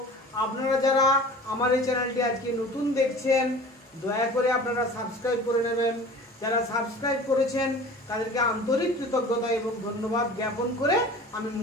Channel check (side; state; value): both; normal; correlation 0.41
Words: আপনারা যারা আমার এই চ্যানেলটি আজকে নতুন দেখছেন দয়া করে আপনারা সাবস্ক্রাইব করে নেবেন। যারা সাবস্ক্রাইব করেছেন তাদেরকে আন্তরিক কৃতজ্ঞতা এবং ধন্যবাদ জ্ঞাপন করে আমি